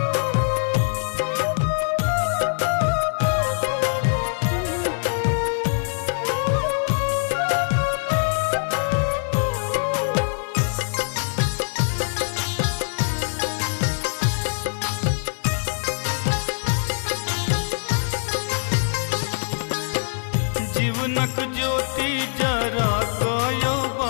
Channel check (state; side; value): silent; right; digital silence